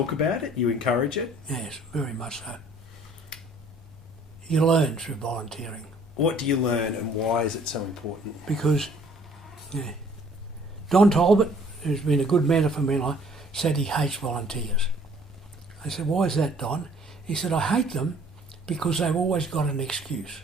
about it, you encourage it. Yes, very much so. You learn through volunteering. What do you learn and why is it so important? Because Don Talbot, who's been a good mentor for me in life, said he hates volunteers. I said, why is that, Don? He said, I hate them because they've always got an excuse.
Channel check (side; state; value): both; normal; correlation 0.57